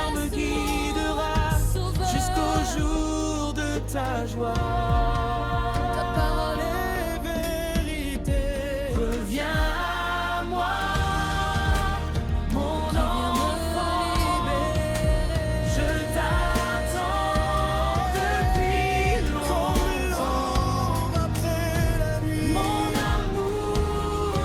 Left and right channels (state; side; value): identical; both; correlation 1.00